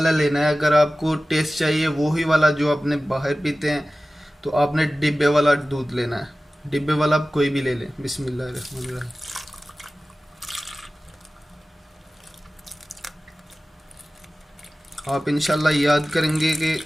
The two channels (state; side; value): normal; both; correlation 0.96